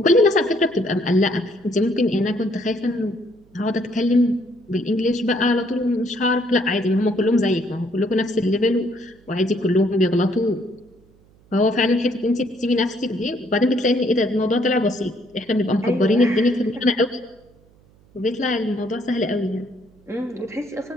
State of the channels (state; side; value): noise; right; hum, 30 dB below the sound